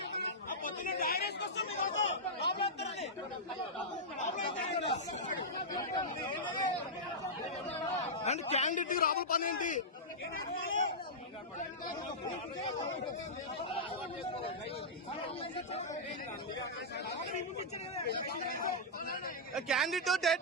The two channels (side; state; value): both; normal; correlation -0.11